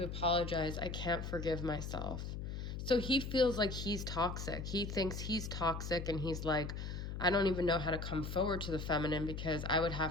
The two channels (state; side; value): noise; left; hum, 5 dB below the sound